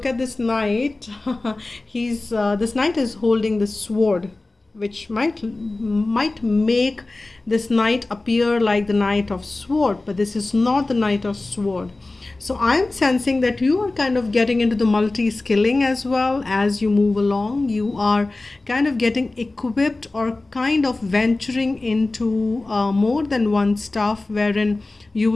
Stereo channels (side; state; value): right; quieter; 3.1 dB